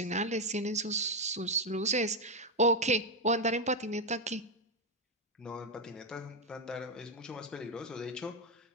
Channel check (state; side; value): normal; both; correlation 0.04